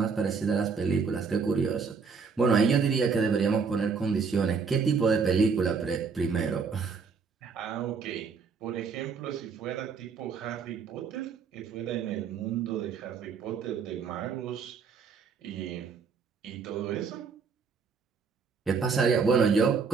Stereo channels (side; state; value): left; quieter; 5.5 dB